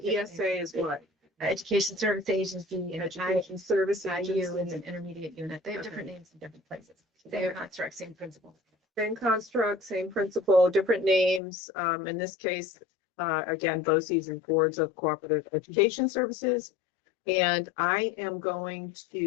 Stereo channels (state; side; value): drops out; right; at 11.4 s